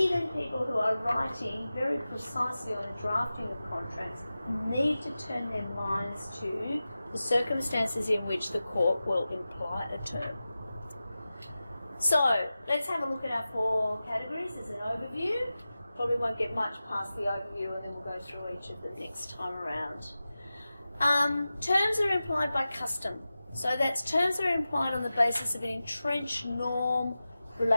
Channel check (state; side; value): inverted; both; correlation -0.95